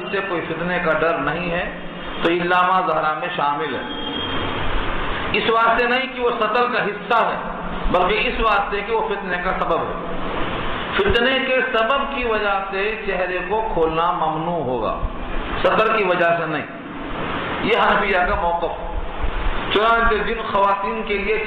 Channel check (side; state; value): both; identical; correlation 1.00